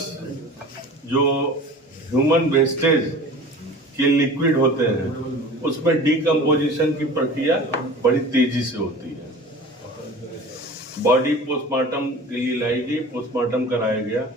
जो ह्यूमन वेस्टेज के लिक्विड होते हैं उसमें डीकम्पोजिशन की प्रक्रिया बड़ी तेजी से होती है। बॉडी पोस्टमार्टम के लिए लाई गई, पोस्टमार्टम कराया गया।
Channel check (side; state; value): both; normal; correlation 0.40